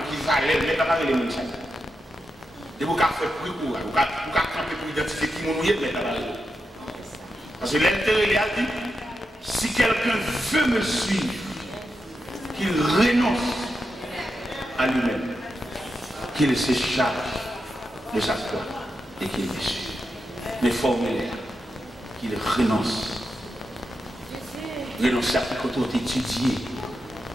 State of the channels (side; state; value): both; normal; correlation 0.88